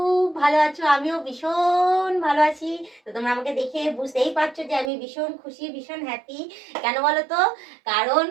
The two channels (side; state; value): left; drops out; at 4.9 s